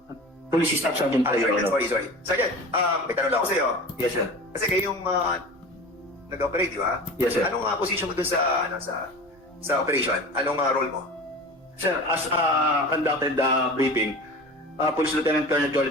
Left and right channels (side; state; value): both; normal; correlation 0.35